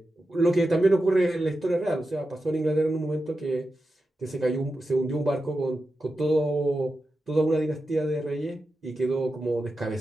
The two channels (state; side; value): normal; both; correlation 0.90